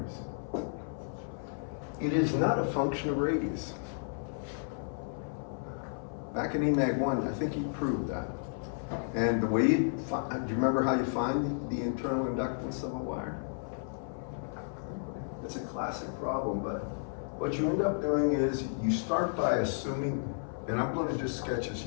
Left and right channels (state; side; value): silent; right; 56 dB below the other